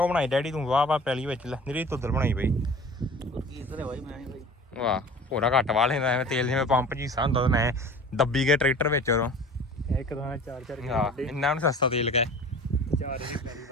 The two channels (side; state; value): both; normal; correlation 0.42